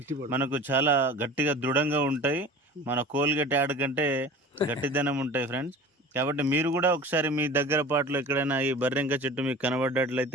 మనకు చాలా గట్టిగా దృఢంగా ఉంటాయి. మన కోల్గేట్ యాడ్ కంటే గట్టిదనం ఉంటాయి ఫ్రెండ్స్. కాబట్టి మీరు కూడా ఒకసారి మీ దగ్గర పాటలో ఎక్కడైనా ఈ బర్రెంక చెట్టు మీకు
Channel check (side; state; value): both; normal; correlation 0.39